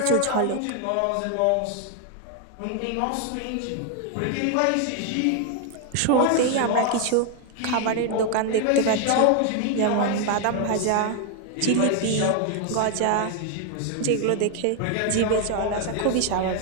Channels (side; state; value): both; different; correlation 0.01